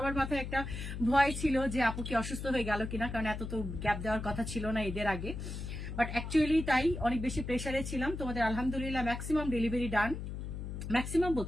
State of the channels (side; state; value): left; noise; hum, 6 dB below the sound